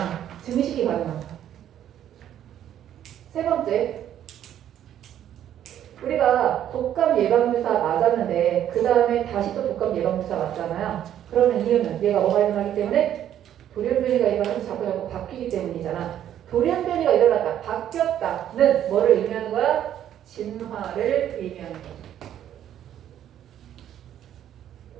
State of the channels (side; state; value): left; quieter; 10.8 dB